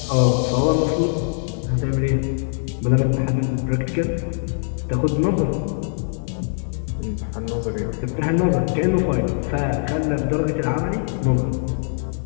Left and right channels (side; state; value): right; silent; digital silence